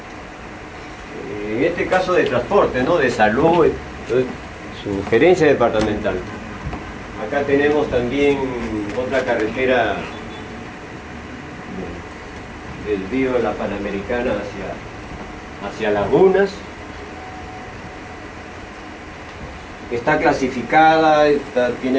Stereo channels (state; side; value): identical; both; correlation 1.00